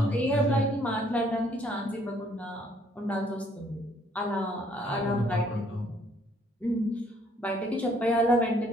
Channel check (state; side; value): normal; both; correlation 0.64